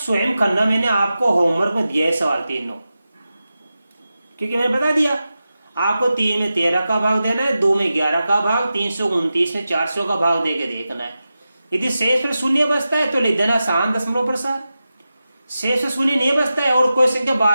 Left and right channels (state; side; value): inverted; both; correlation -0.93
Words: करना, मैंने आपको होमवर्क में दिया है सवाल तीनों, क्योंकि मैंने बता दिया आपको 3 में 13 का भाग देना है, 2 में 11 का भाग, 329 में 400 का भाग देके देखना है। यदि शेष पर शून्य बचता है तो लिख देना शांत दशमलव प्रसार। शेष पर शून्य नहीं बचता है और कोई संख्या